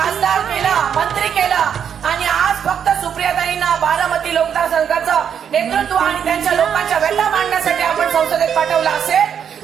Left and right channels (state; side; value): quieter; left; 8.1 dB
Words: केला, मंत्री केला, आणि आज फक्त सुप्रियाताईंना बारामती मतदारसंघाचं नेतृत्व आणि त्यांच्या लोकांच्या व्यथा मांडण्यासाठी आपण संसदेत पाठवलं